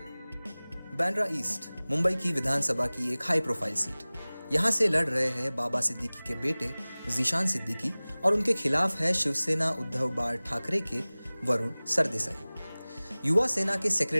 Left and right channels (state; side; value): inverted; both; correlation -0.99